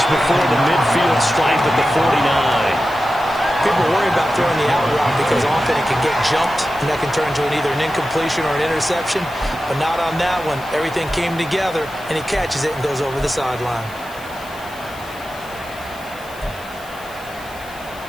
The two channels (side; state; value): left; noise; hiss, 21 dB below the sound